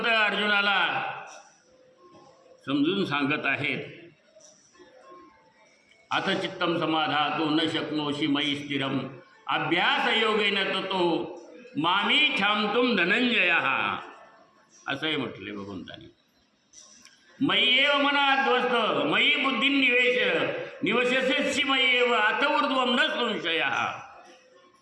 अर्जुनाला समजून सांगत आहेत। अथ चित्तम समाधातु न शक्नोषि मयि स्थिरम अभ्यास योगेन ततो मामी छामतुम धनंजयः असंही म्हटले भगवंतानी। मयि एव मनाध्वस्त मयि बुद्धी निवशस्यसि मयि एव अथ ऊर्ध्वं न संशयः।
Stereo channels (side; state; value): both; identical; correlation 1.00